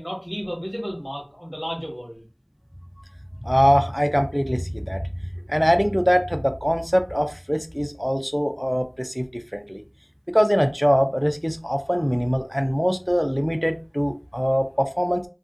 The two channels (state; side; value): identical; both; correlation 1.00